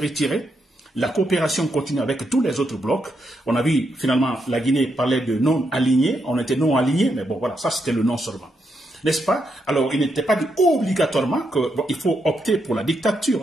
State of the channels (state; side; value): normal; both; correlation 0.81